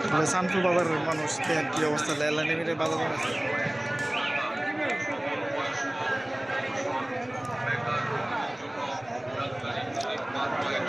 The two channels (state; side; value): noise; right; rumble, 29 dB below the sound